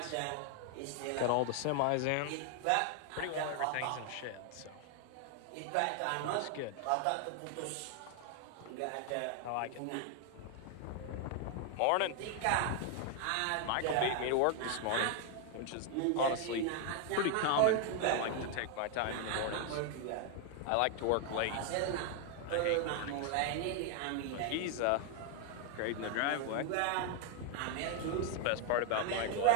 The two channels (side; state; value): both; different; correlation 0.00